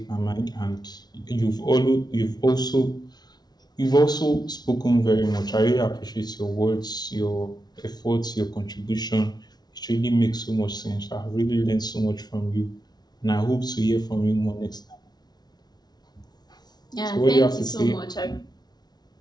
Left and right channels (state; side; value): late; right; 0.19 ms